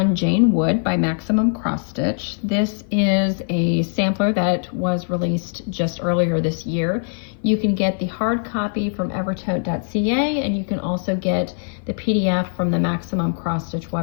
Jane Wood by Maximum Cross Stitch. This is a sampler that was released just earlier this year. You can get the hard copy from Evertote.ca and you can also get the PDF from the Maximum Cross Stitch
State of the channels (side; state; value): right; silent; 55 dB below the other